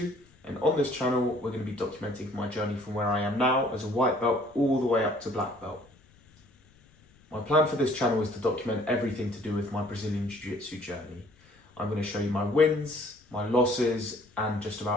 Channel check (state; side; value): noise; left; rumble, 30 dB below the sound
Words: and on this channel we're going to be documenting my journey from where I am now as a white belt all the way up to black belt. My plan for this channel is to document everything to do with my Brazilian Jiu Jitsu journey. I'm going to show you my wins, my losses and just